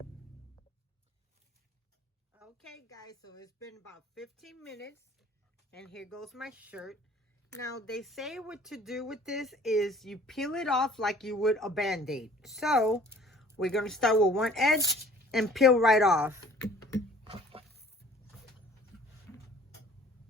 Okay, guys, so it's been about 15 minutes, and here goes my shirt. Now, they say what to do with this is you peel it off like you would a Band-Aid. So, we're going to start with one edge and peel right off.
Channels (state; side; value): normal; both; correlation 0.52